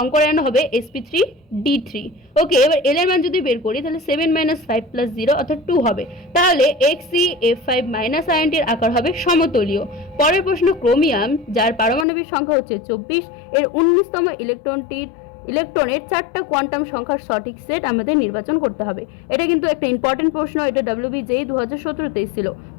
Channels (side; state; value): right; drops out; at 12.1 s